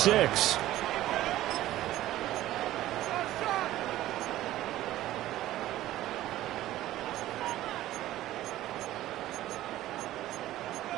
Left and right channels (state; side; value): quieter; left; 14.7 dB